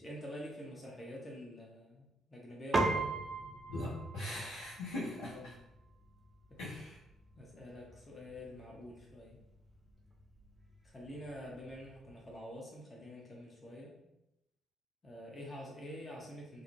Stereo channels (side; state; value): both; normal; correlation 0.75